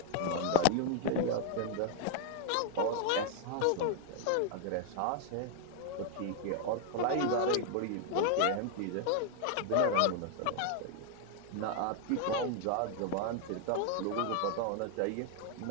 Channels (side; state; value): both; different; correlation 0.00